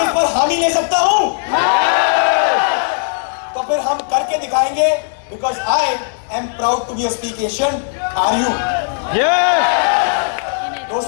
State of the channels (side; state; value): right; silent; digital silence